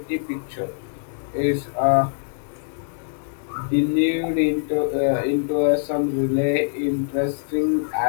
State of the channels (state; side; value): silent; right; 63 dB below the other